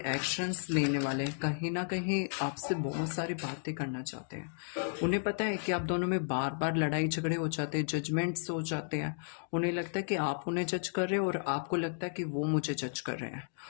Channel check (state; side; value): silent; right; digital silence